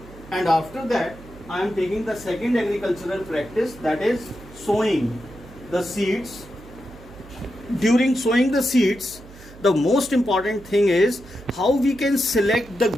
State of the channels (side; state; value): right; noise; hum, 19 dB below the sound